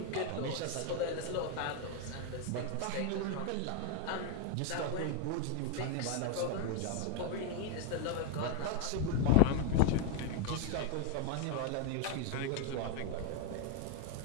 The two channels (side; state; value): both; different; correlation 0.01